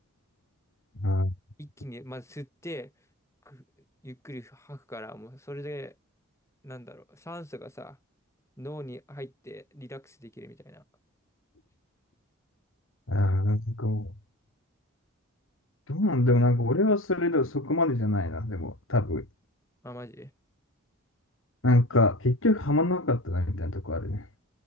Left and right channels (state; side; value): normal; both; correlation 0.36